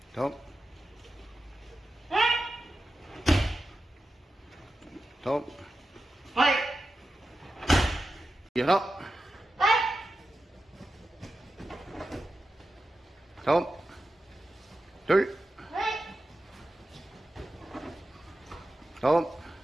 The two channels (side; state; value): both; normal; correlation 0.92